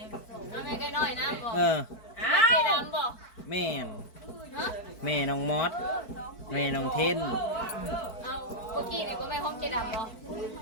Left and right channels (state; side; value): late; right; 4.5 ms